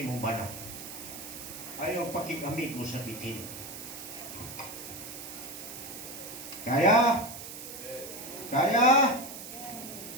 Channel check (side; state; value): right; noise; hiss, 10 dB below the sound